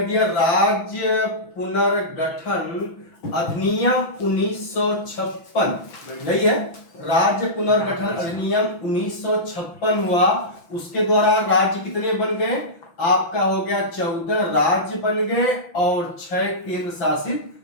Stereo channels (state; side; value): late; right; 6.0 ms